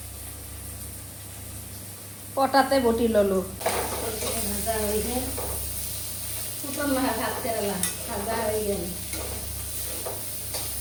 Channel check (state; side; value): identical; both; correlation 1.00